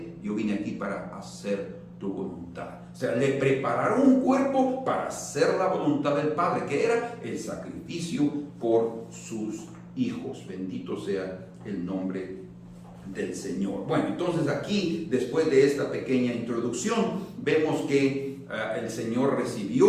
yo vine aquí para hacer tu voluntad. O sea, le prepararon un cuerpo para hacer la voluntad del Padre, que era el sacrificio por sus hijos. Bendito sea el nombre del Señor. Bueno, entonces aquí, después de esta pequeña introducción, vemos que el Señor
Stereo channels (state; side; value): identical; both; correlation 1.00